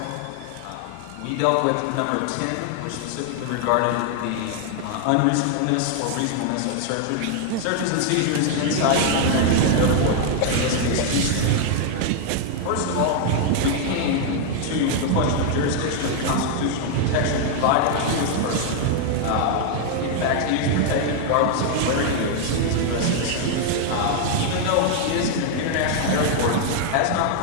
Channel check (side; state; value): both; different; correlation 0.00